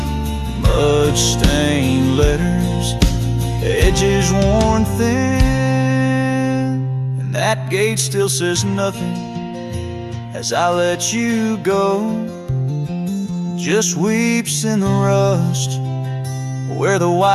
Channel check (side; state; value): both; identical; correlation 1.00